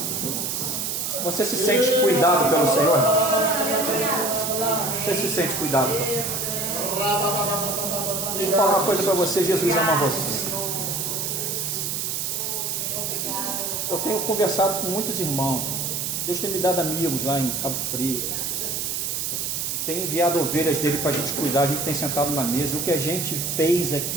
Você se sente cuidado pelo Senhor? Você se sente cuidado pelo Senhor? Deixa eu falar uma coisa para você, Jesus ama você. Eu tenho conversado com muitos irmãos. Deus tem me dado amigos lá em Cabo Frio. Tem enviado ovelhas dele para a gente cuidar. A gente tem sentado na mesa. O que a gente fez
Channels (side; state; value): right; noise; hiss, 2 dB below the sound